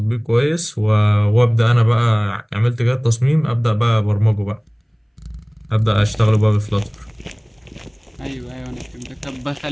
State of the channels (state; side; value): identical; both; correlation 1.00